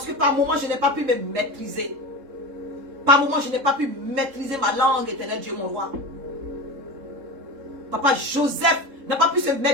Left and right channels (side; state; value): left; late; 3.7 ms